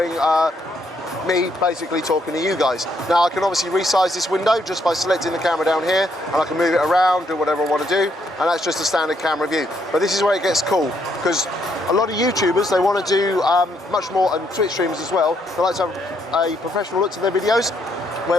me basically talking to you guys. Now I can obviously resize this window just by selecting the camera down here, and I can move it around, do whatever I want to do, and that's just a standard camera view. But this is where it gets cool, because a lot of YouTubers, they want to do much more, and Twitch streamers as well, they like to have a professional look to their videos,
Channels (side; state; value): both; normal; correlation 0.73